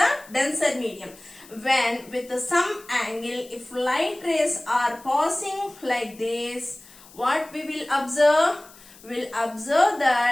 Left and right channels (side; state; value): left; noise; hiss, 23 dB below the sound